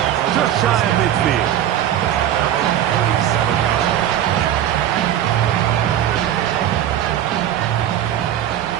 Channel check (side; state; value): left; quieter; 11.2 dB